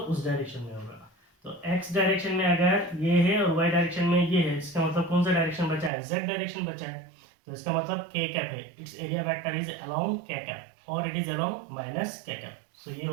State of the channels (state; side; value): drops out; left; at 5.9 s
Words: डायरेक्शन में होगा। तो x डायरेक्शन में अगर ये है और y डायरेक्शन में ये है, इसका मतलब कौन सा डायरेक्शन बचा है, z डायरेक्शन बचा है। तो इसका मतलब k कैप है, it's area vector is along k cap और it is along minus k cap. So ये